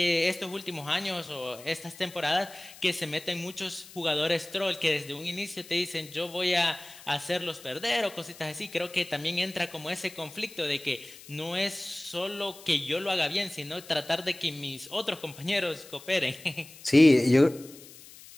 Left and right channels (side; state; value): left; noise; hiss, 19 dB below the sound